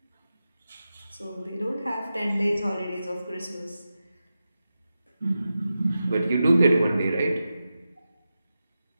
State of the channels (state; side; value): inverted; both; correlation -0.91